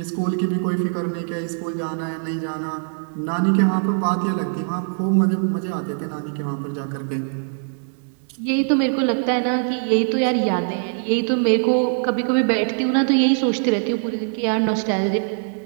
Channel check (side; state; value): left; silent; 63 dB below the other